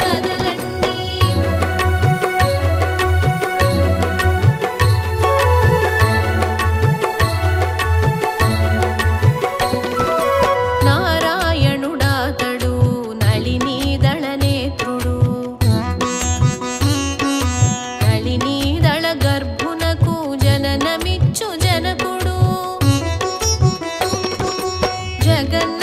కదలండి నారాయణుడాతడు నళినీదళ నేత్రుడు నళినీదళ గర్భునకు జననమిచ్చు జనకుడు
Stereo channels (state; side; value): identical; both; correlation 1.00